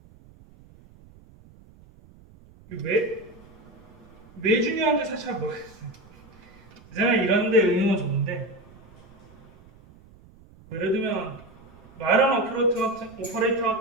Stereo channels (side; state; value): right; noise; rumble, 25 dB below the sound